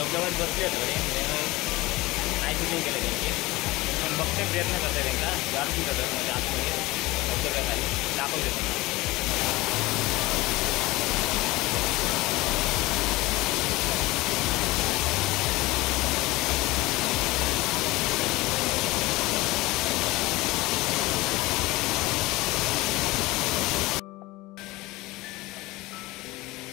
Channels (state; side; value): quieter; right; 20.6 dB